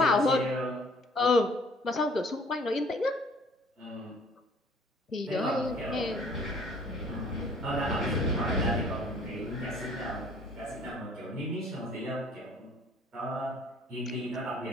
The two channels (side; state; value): both; normal; correlation 0.56